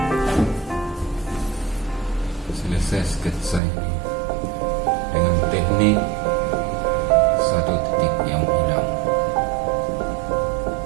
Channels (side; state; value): left; drops out; at 3.6 s